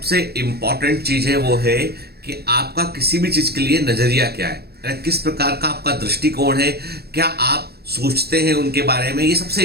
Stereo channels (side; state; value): left; late; 0.46 ms